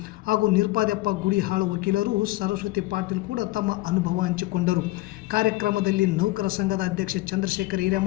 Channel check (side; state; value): right; quieter; 19.3 dB